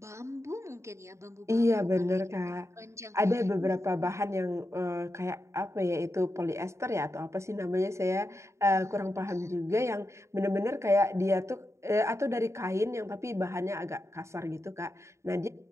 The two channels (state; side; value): late; left; 0.14 ms